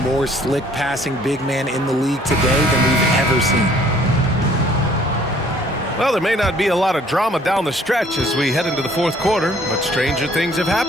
more slick passing big man in the league today than we've ever seen. Well, there may not be a lot of drama down the stretch as we head into the fourth quarter, but stranger things have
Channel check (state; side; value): normal; both; correlation 0.59